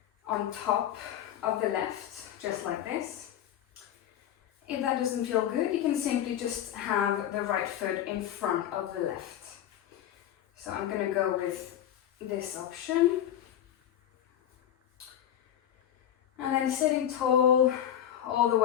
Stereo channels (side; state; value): right; quieter; 10.8 dB